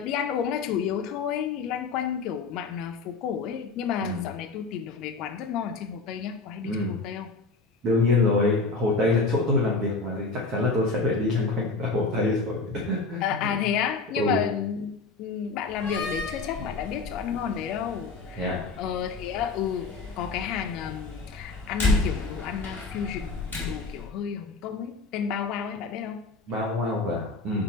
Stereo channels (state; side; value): quieter; right; 4.1 dB